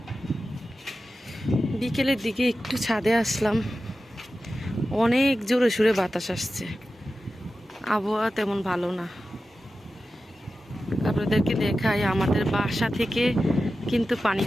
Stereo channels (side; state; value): both; normal; correlation 0.93